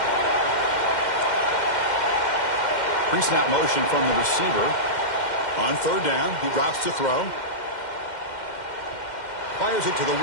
Pre-snap motion from the receiver. On third down, he drops to throw. Fires it to the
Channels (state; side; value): late; right; 2.1 ms